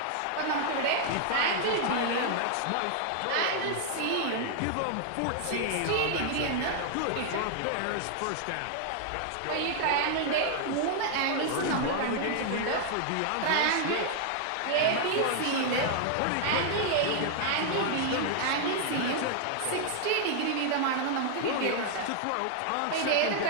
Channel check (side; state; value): both; different; correlation 0.00